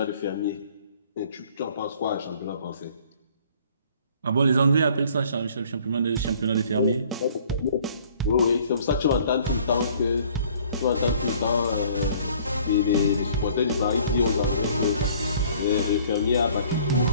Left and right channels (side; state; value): both; inverted; correlation -0.55